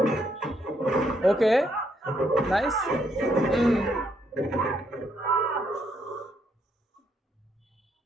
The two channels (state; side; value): normal; both; correlation 0.74